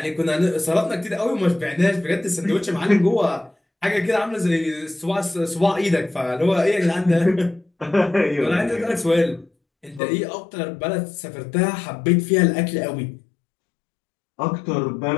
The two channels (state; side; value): drops out; right; at 10.0 s